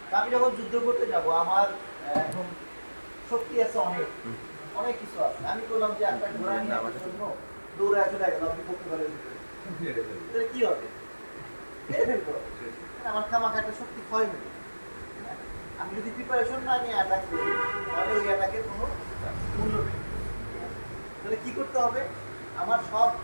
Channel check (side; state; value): both; inverted; correlation -1.00